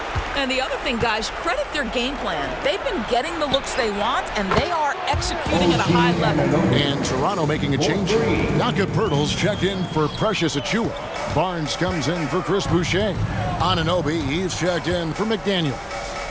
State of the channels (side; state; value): both; identical; correlation 1.00